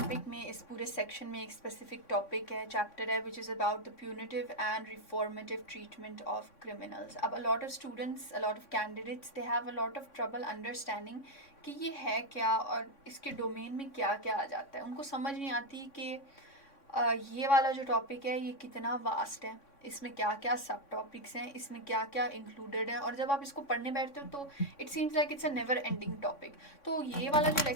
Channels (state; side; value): late; right; 3.6 ms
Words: में इस पूरे सेक्शन में एक स्पेसिफिक टॉपिक है, चैप्टर है, which is about the punitive and reformative treatment of criminals. अब a lot of students, a lot of candidates, they have a lot of trouble understanding कि ये है क्या और इसके डोमेन में क्या क्या आ जाता है. उनको समझ नहीं आती कि ये वाला जो टॉपिक है ये कितना वास्ट है, इसमें क्या क्या सब टॉपिक्स हैं, इसमें क्या क्या इंक्लूडेड है, और जब आप इसको पढ़ने बैठते हो तो it seems like it's a never ending topic. तो ये वाला जो